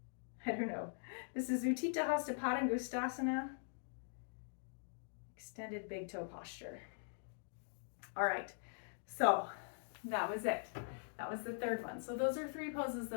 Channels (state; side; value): silent; right; digital silence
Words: I don't know. This is utthita, hasta, padangusthasana. Extended big toe posture. All right, so that was it. That was the third one. So those are 3 poses